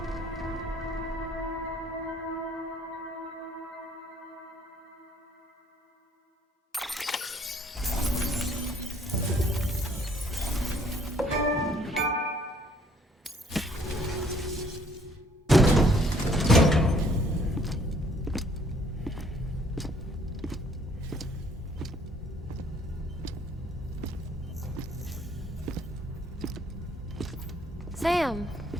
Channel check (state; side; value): normal; both; correlation 0.62